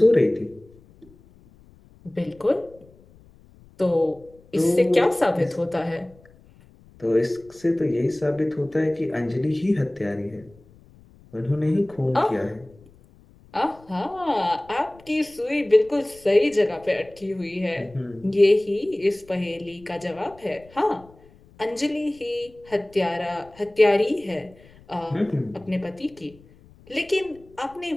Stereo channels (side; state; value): left; noise; rumble, 26 dB below the sound